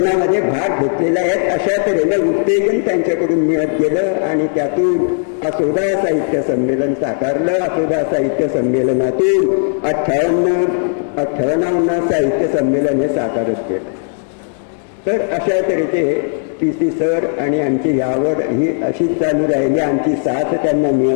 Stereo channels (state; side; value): silent; right; 69 dB below the other